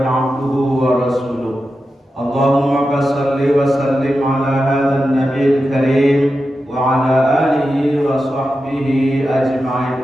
abduhu wa rasuluh. Allahumma shalli wa sallim ala hadzal nabiyil karim wa ala alihi wa sahbihi ajma'in,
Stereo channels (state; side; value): normal; both; correlation 0.90